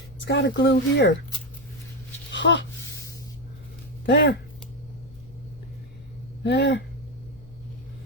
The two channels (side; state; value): left; noise; rumble, 20 dB below the sound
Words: It's got to glue here. Huh. There. There.